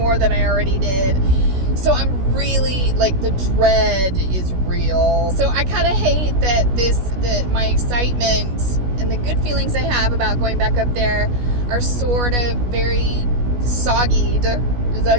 than I already did. So I'm really, the dread is real. So I kind of hate that my excitement and the good feelings I have about going back up there are sort of very soggied, is that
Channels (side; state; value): left; late; 16 ms